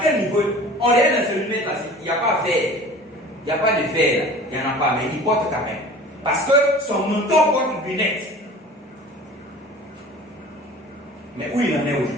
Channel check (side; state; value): both; normal; correlation 0.42